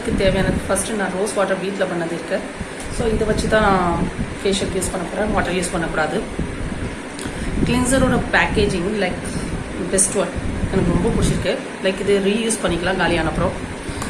தேவையானது ஃபஸ்ட்டு நான் ரோஸ் வாட்டர் வீட்டில் பண்ணது இருக்கு. ஸோ இதை வச்சு தான் நான் ஃபேஷியல் யூஸ் பண்ண போகிறேன், வாட்டர் யூஸ் பண்ணக்கூடாது. கிளின்சரோட பேக்கேஜிங் லைக் பெஸ்ட் ஒன், எனக்கு ரொம்ப பிடிச்சிருக்கு. லைக் இது ரீயூஸ் பண்ணிக்கலாம் காலியான அப்புறம்.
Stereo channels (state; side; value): identical; both; correlation 1.00